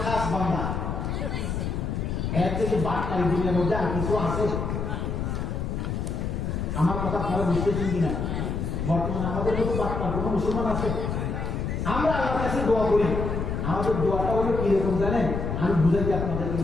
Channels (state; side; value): noise; left; rumble, 2 dB below the sound